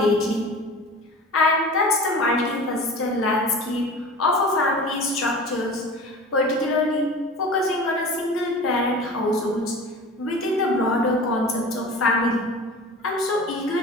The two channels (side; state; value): both; normal; correlation 0.37